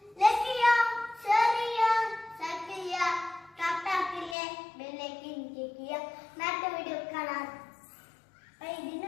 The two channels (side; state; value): right; drops out; at 4.4 s